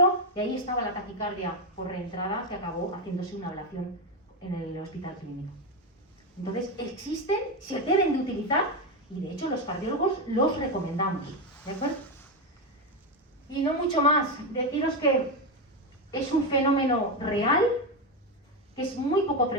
y ahí estaba la taquicardia por reentrada que acabó haciéndose una ablación en el hospital clínico. Entonces existen, se deben de utilizar y de hecho los cardiólogos los recomendamos, ¿de acuerdo? Y no mucho más, deciros que es un fenómeno real, que es muy poco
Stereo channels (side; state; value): both; normal; correlation 0.10